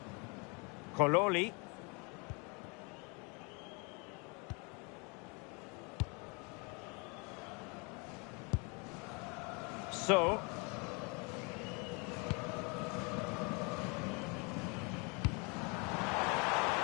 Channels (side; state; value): right; quieter; 31.6 dB